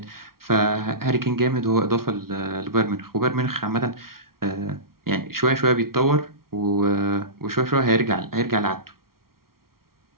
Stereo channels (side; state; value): left; late; 0.93 ms